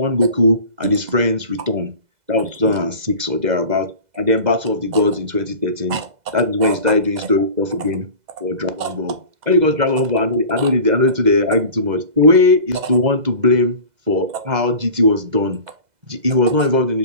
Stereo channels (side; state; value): left; late; 2.0 ms